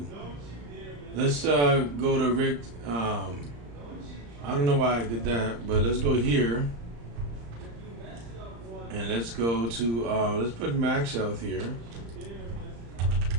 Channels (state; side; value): late; left; 35 ms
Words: Let's go to Rick. I don't know why I did that, but let's go here. And let's go to, let's put max health here.